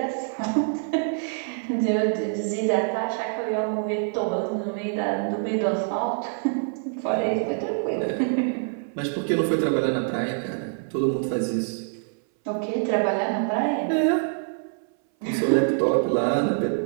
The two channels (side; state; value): left; silent; 59 dB below the other